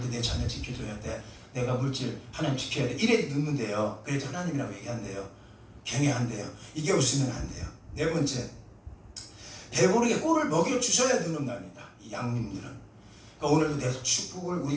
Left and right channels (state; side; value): identical; both; correlation 1.00